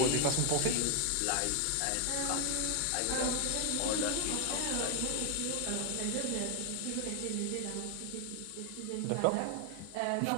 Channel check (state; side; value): different; both; correlation 0.01